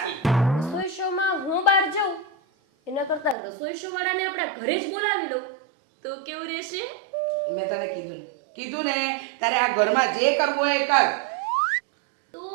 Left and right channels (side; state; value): left; drops out; at 3.4 s